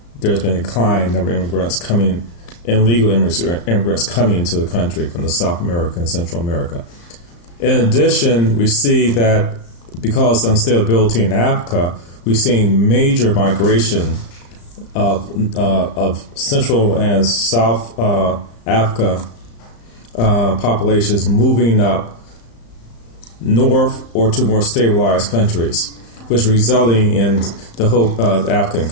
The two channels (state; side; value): late; right; 35 ms